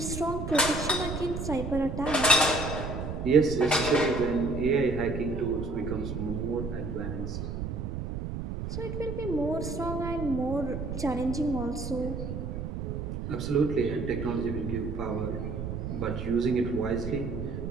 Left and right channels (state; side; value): noise; right; rumble, 5 dB below the sound